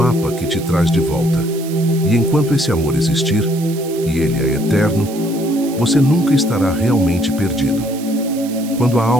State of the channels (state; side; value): noise; right; hiss, 16 dB below the sound